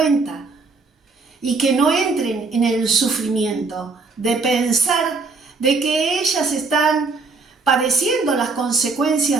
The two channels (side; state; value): left; quieter; 4.1 dB